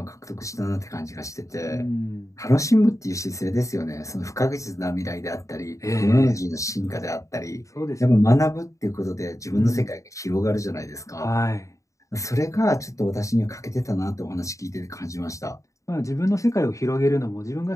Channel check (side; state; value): right; late; 0.15 ms